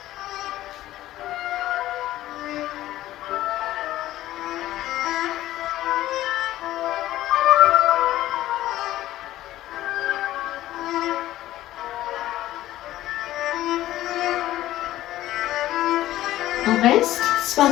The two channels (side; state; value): right; quieter; 14.7 dB